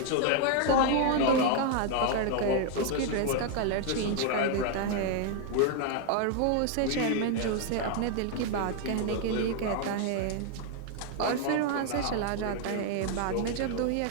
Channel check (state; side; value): different; both; correlation 0.00